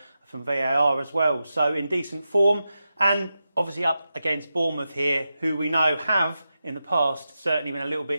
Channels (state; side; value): inverted; both; correlation -0.90